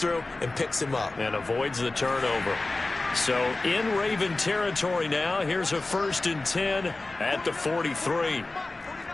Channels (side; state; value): right; quieter; 3.1 dB